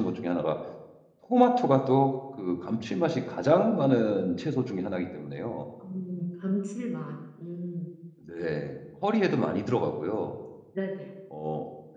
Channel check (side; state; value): both; identical; correlation 1.00